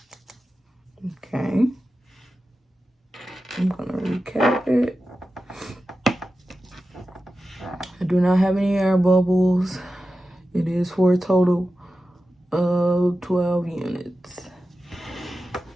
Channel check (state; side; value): normal; both; correlation 0.93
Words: Okay. I'm gonna recap it. I do not have any air bubbles. It is for a total of 12 units.